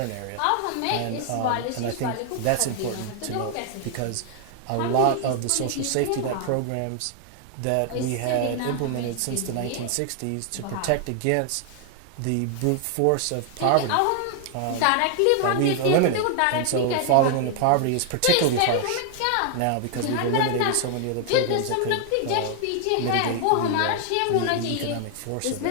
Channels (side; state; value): both; different; correlation 0.00